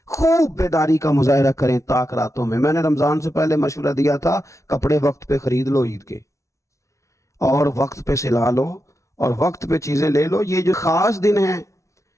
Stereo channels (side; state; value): right; late; 0.14 ms